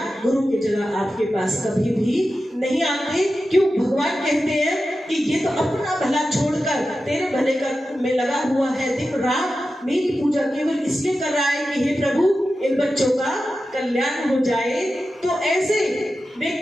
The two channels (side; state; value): both; normal; correlation 0.92